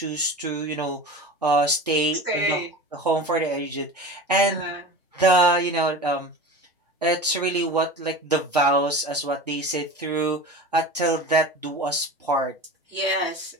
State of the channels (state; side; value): normal; both; correlation 0.33